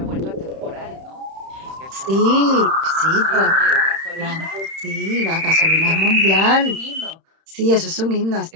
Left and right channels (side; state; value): left; late; 31 ms